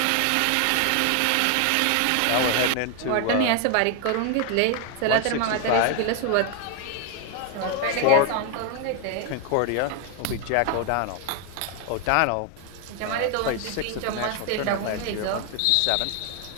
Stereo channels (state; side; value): different; both; correlation 0.00